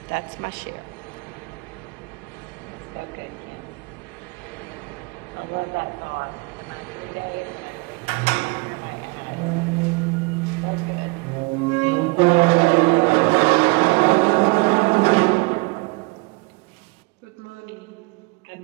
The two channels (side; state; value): left; quieter; 27.3 dB